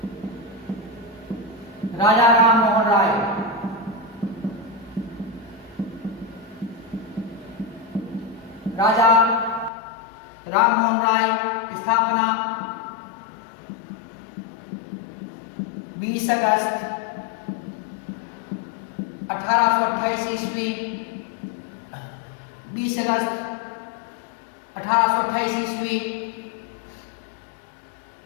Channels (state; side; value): drops out; right; at 9.7 s